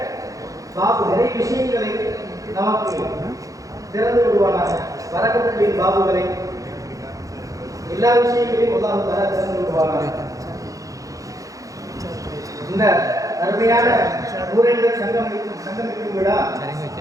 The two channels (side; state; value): left; late; 0.16 ms